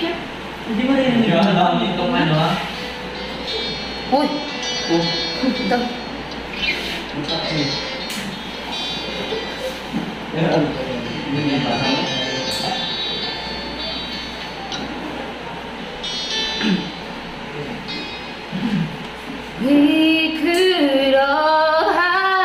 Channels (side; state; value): both; identical; correlation 1.00